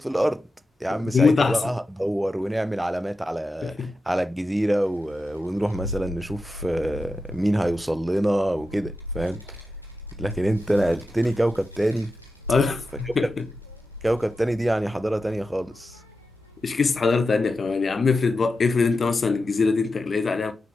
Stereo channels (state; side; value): normal; both; correlation 0.91